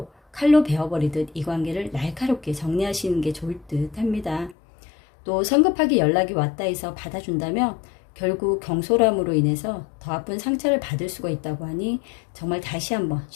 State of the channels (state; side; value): drops out; right; at 4.5 s